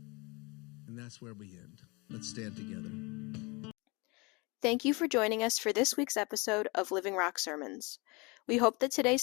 And that's where we end. Let's stand together. Thank you for joining us for this week's episode of Living Rock Sermons. We hope that today's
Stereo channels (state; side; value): quieter; right; 27.6 dB